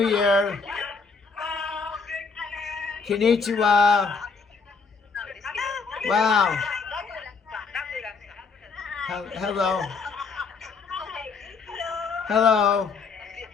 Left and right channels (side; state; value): right; quieter; 4.9 dB